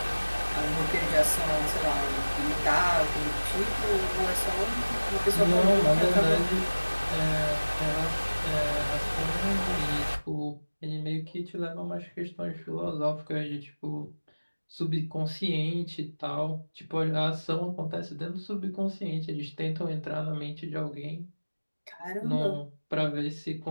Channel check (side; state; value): both; inverted; correlation -1.00